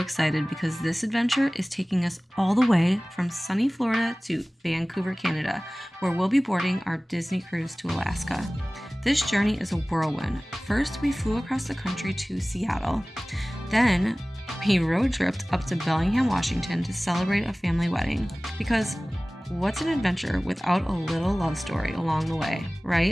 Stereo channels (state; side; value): normal; both; correlation 0.98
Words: because this adventure is taking us all the way from sunny Florida to Vancouver, Canada, where we'll be boarding our Disney cruise to Alaska. This journey is a whirlwind. First, we flew across the country to Seattle. Then, we road tripped up to Bellingham, Washington to celebrate a family wedding. Because what's an adventure without a little love story along the way,